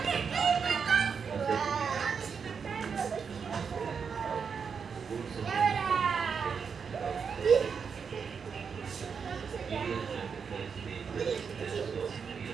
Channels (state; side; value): quieter; left; 6.2 dB